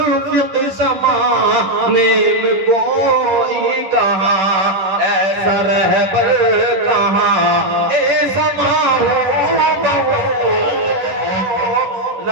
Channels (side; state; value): left; late; 10 ms